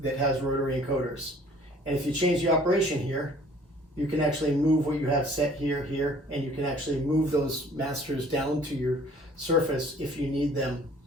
has rotary encoders. And if you change the operation here, you can actually move what you have set here, and you can actually move those masters down to your surface if you need them,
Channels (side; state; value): both; normal; correlation 0.54